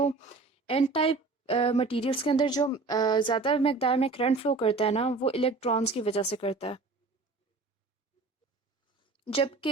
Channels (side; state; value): left; quieter; 3.7 dB